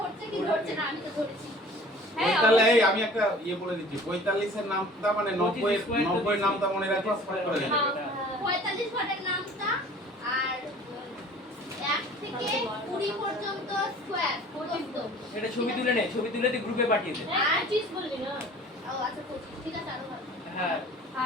কি ধরছে না, আমি তো ধরেছি। হ্যাঁ, তাহলে এই আমি একটা বলে দিচ্ছি, 45 এর নামটা মানে 90 এর 90 এর নামটা মনে রাখো, ফট করে দেবে। 45 ঘরের নামটা, আর 1 থেকে 20 পর্যন্ত স্কয়ার প্রদত্ত। এটা ছবি তুলে নে, ছবি তুলে দিয়ে গ্রুপে পাঠিয়ে দে। আর চিজ বলবি না ও আচ্ছা 25, ঠিক আছে, আরো ভালো। হ্যাঁ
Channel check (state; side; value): normal; both; correlation 0.47